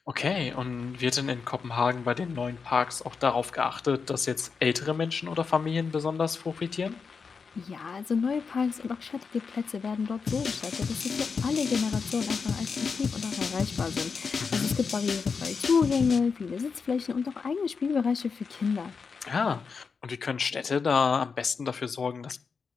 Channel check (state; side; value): quieter; right; 5.3 dB